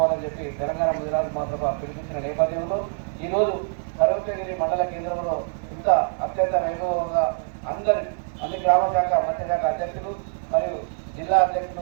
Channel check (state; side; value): silent; left; 62 dB below the other